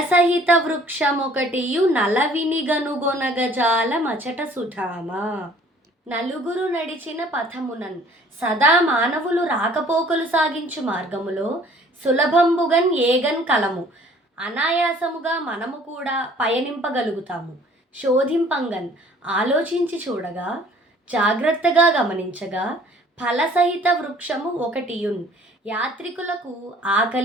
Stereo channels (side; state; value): both; normal; correlation 0.55